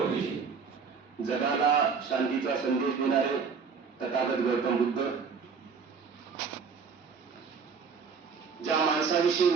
जगाला शांतीचा संदेश देणारे तथागत गौतम बुद्ध, ज्या माणसाविषयी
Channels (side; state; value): left; quieter; 5.6 dB